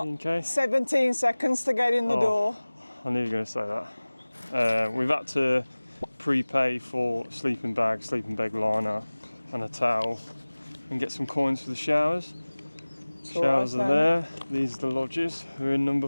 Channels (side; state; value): both; inverted; correlation -1.00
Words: T&K. 17 seconds to get in the Oh. door. I knew you were going to say that. We've had to prepay for sleeping bag liner and a towel and get some coins for the showers. Showers are there. These are the lodges. We're in number